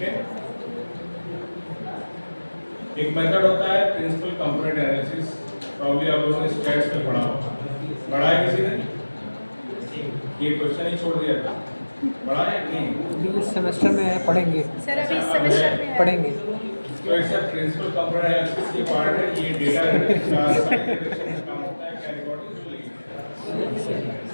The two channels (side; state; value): both; inverted; correlation -1.00